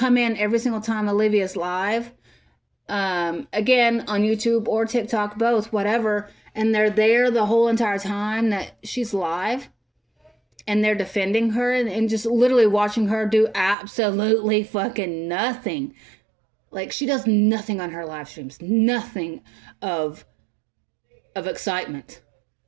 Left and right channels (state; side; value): drops out; left; at 13.8 s